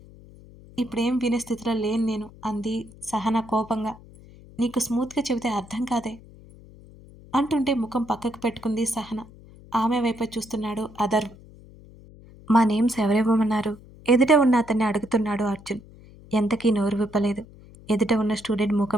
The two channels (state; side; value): noise; left; hum, 21 dB below the sound